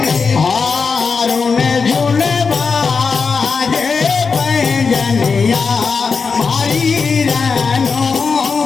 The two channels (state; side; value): quieter; right; 5.1 dB